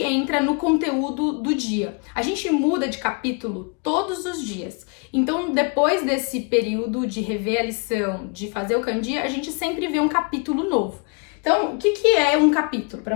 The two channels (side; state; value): right; quieter; 34.3 dB